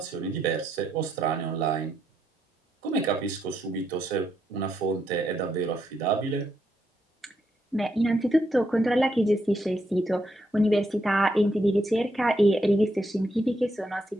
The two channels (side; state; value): both; normal; correlation 0.79